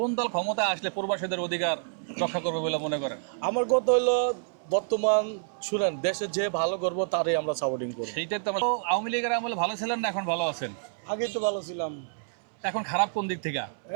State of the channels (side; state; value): left; silent; 59 dB below the other